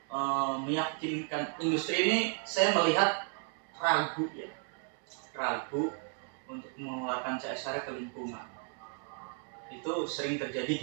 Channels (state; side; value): quieter; left; 39.5 dB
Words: meyakinkan industri ini saya melihat ragu untuk mengeluarkan CSR ke lingkungan. Itu sering terjadi